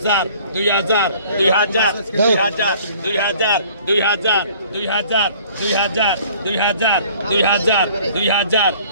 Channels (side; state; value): both; inverted; correlation -0.53